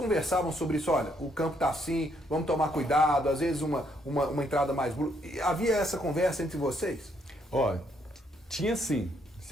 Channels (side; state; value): both; normal; correlation 0.72